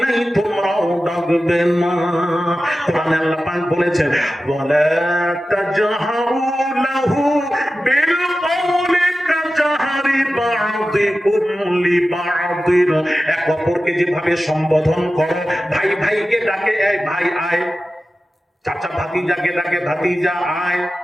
নাই, তোমরাও ডাকবে না। কোরআনে আল্লাহ পাক বলেছেন, ওয়ালা তাজহারু লাহু বিল কওলি কাজহারি বা'দিকুম লিবা'দিন। এক অপরকে যেভাবে সম্বোধন করো, ভাই ভাইকে ডাকে এই ভাই আয়, চাচা ভাতিজাকে ডাকে ভাতিজা আয়,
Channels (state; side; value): normal; both; correlation 0.94